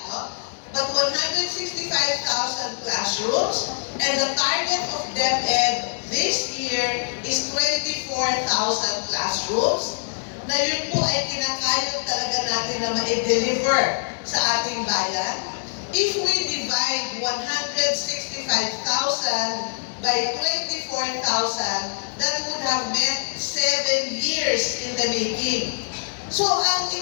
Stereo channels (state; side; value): silent; right; digital silence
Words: no? But 165,000 classrooms, and the target of DepEd this year is 24,000 classrooms, na yun po ay kinakayod talaga natin na ma-deliver sa ating bayan. If we divide 165,000 by 24,000, that would have meant 7 years in the making. So, ang